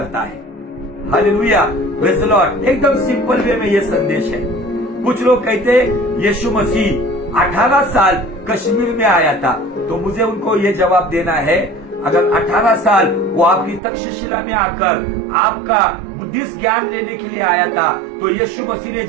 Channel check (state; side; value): drops out; left; at 13.8 s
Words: है। Hallelujah, praise the Lord. एकदम सिंपल वे में यह संदेश है। कुछ लोग कहते यीशु मसीह 18 साल कश्मीर में आया था, तो मुझे उनको ये जवाब देना है, अगर 18 साल वो आपकी तक्षशिला में आकर आपका बुद्धिस्ट ज्ञान लेने के लिए आया था, तो यीशु मसीह ने